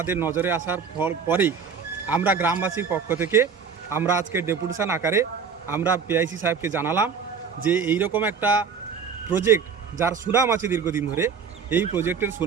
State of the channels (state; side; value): quieter; left; 6.1 dB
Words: নজরে আসার পরেই আমরা গ্রামবাসীর পক্ষ থেকে আমরা আজকে ডেপুটেশন আকারে আমরা পিআইসি সাহেবকে জানালাম যে এই রকম একটা প্রজেক্ট যার সুনাম আছে দীর্ঘদিন ধরে, এই প্রজেক্টের